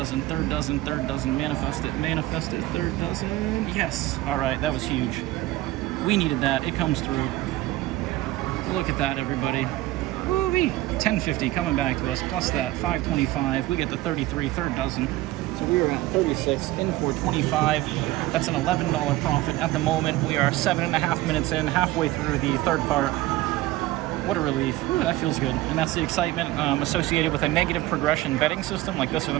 3rd dozen, 3rd dozen. Manifest it, 3rd dozen. Yes. All right, that was huge. We needed that. It comes through. Look at that, everybody. Woo-wee. 1050 coming back to us, plus that 525. We get the 33, 3rd dozen. So we are at 36, in for 25. That's an $11 profit at the moment. We are 7.5 minutes in, halfway through the 3rd part. What a relief. Ooh, that feels good. And that's the excitement associated with a negative progression betting system like this or the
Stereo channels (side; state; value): left; quieter; 17.2 dB